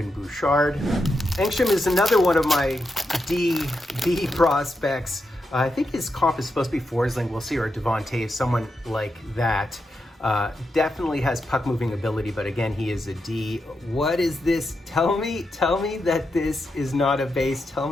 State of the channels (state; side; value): normal; both; correlation 0.85